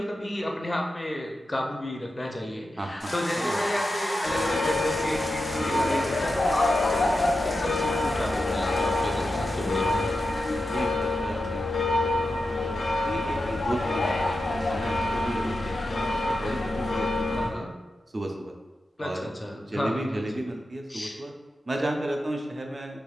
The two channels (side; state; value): both; normal; correlation 0.90